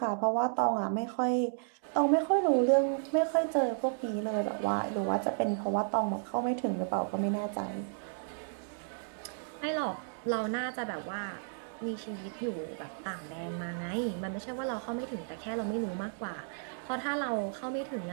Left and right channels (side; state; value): left; silent; digital silence